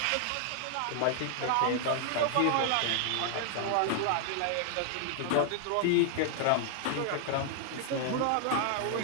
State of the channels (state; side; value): different; both; correlation 0.00